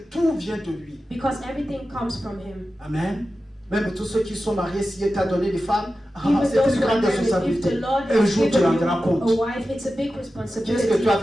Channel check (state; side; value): normal; both; correlation 0.93